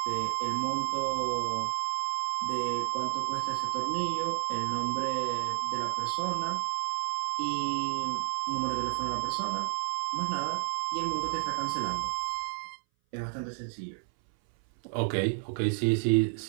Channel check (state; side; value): silent; left; 57 dB below the other